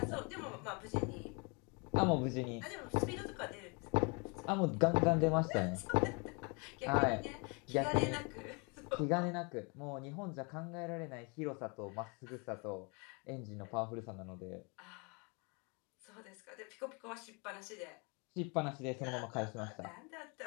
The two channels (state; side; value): quieter; right; 32.3 dB